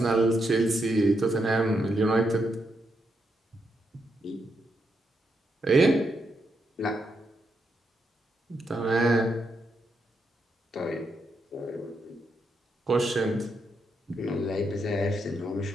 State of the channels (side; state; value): both; normal; correlation 0.81